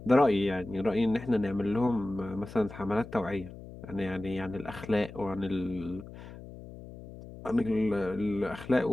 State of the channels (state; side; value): noise; left; hum, 15 dB below the sound